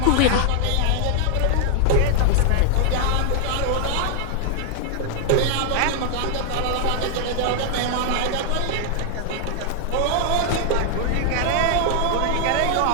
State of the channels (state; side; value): different; both; correlation 0.00